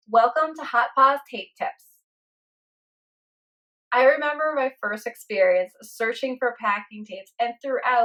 Welcome to Pawz Tape Tips. I remember my first experience searching for packing tapes and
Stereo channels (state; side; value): identical; both; correlation 1.00